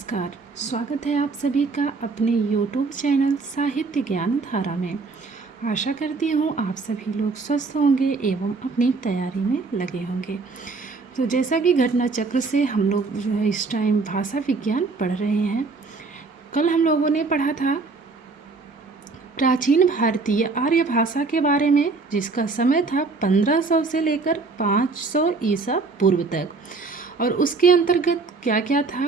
स्वागत है आप सभी का अपने यूट्यूब चैनल साहित्य ज्ञान धारा में। आशा करती हूँ आप सभी लोग स्वस्थ होंगे एवं अपनी तैयारी में लगे होंगे। तो जैसा कि घटना चक्र से हम लोग जो है इस टाइम भाषा विज्ञान पढ़ रहे हैं। कल हम लोगों ने पढ़ा था प्राचीन भारतीय आर्य भाषा के बारे में, जिसका समय था 1500 से लेकर 500 ईसा पूर्व तक। और उसके अंतर्गत क्या क्या था,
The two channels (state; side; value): quieter; left; 4.1 dB